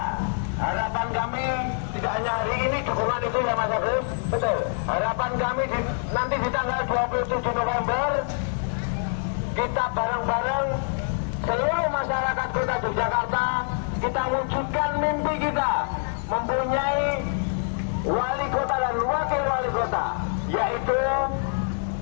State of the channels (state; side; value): silent; right; digital silence